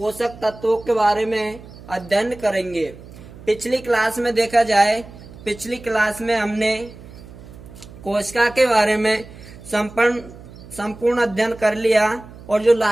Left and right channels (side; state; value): right; noise; hum, 18 dB below the sound